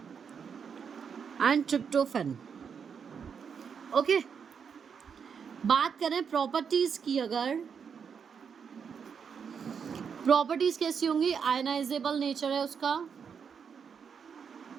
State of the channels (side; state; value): left; quieter; 6.7 dB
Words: and tryptophan. Okay, बात करें प्रॉपर्टीज की, अगर प्रॉपर्टीज कैसी होंगी, आयनाइजेबल नेचर है उसका,